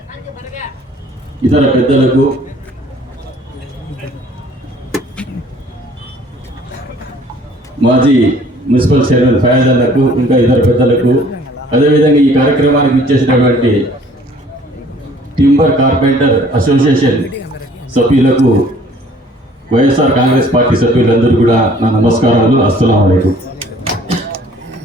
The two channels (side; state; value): both; normal; correlation 0.55